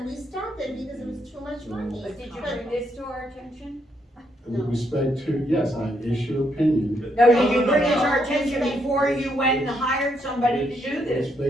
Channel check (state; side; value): normal; both; correlation 0.76